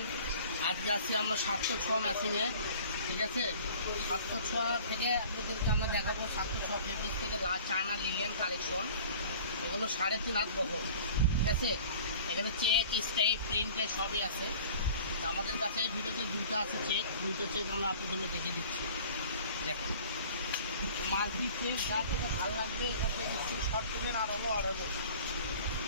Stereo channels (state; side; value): inverted; both; correlation -0.46